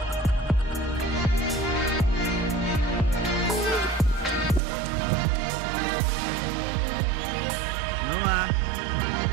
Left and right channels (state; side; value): drops out; left; at 4.6 s